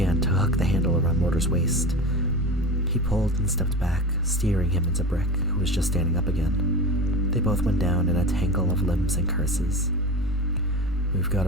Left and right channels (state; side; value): normal; both; correlation 0.28